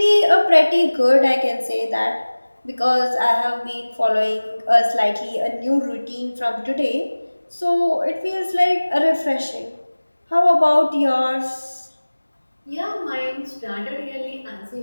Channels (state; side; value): inverted; both; correlation -1.00